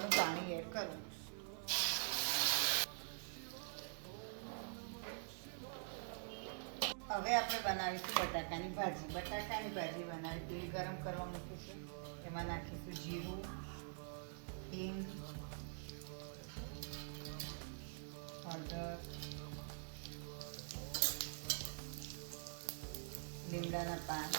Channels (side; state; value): left; silent; digital silence